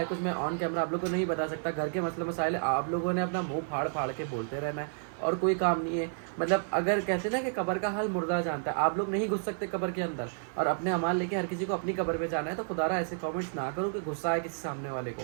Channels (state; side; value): silent; left; digital silence